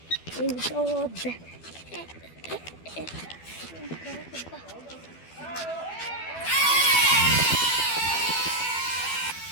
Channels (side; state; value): right; late; 12 ms